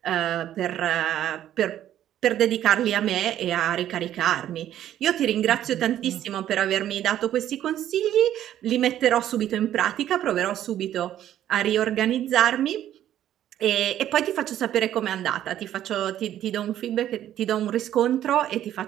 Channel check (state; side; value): quieter; left; 11.7 dB